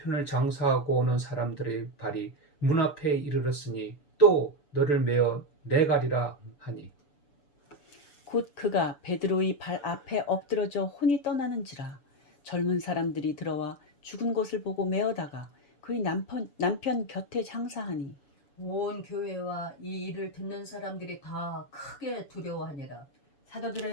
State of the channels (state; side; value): late; right; 6.9 ms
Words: 장사하고 오는 사람들의 발이 문 앞에 이르렀으니 또 너를 메어 내가리라 하니 곧 그가 베드로의 발 앞에 엎드러져 혼이 떠나는지라. 젊은 사람들이 들어와 죽은 것을 보고 메어다가 그의 남편 곁에 장사하니 온 교회와 이 일을 듣는 사람들이 다 크게 두려워하니라.